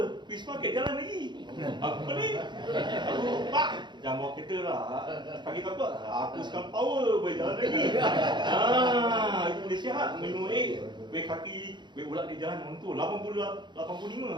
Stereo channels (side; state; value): left; late; 0.22 ms